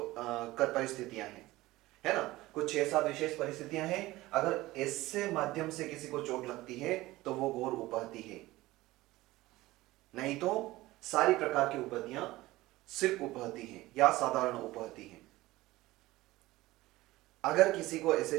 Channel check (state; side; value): quieter; left; 18.3 dB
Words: हैं, है ना। कुछ 6-7 विशेष परिस्थितियां हैं। अगर इससे माध्यम से किसी को चोट लगती है तो वो गौर उपहति है, नहीं तो सारी प्रकार की उपहतियां सिर्फ उपहति हैं या साधारण उपहति हैं। अगर किसी को